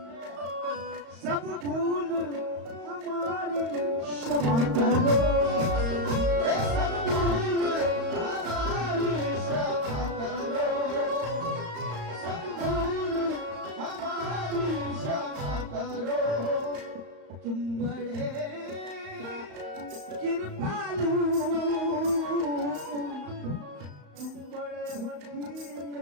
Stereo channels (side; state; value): left; late; 35 ms